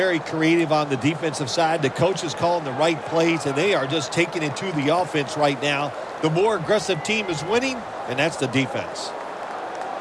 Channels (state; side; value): identical; both; correlation 1.00